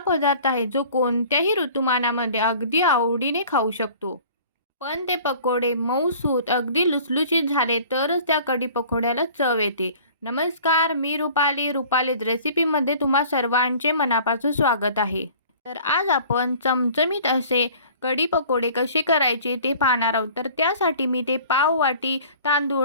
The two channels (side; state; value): both; inverted; correlation -0.48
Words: आहे जो कोणत्याही ऋतुमानामध्ये अगदी आवडीने खाऊ शकतो. पण ते पकोडे मऊसूत अगदी लुसलुशीत झाले तरच त्या कढी पकोड्याला चव येते. नमस्कार, मी रुपालीज रेसिपीमध्ये तुम्हा सर्वांचे मनापासून स्वागत आहे. तर आज आपण चमचमीत असे कढी पकोडे कसे करायचे ते पाहणार आहोत. तर त्यासाठी मी ते पाव वाटी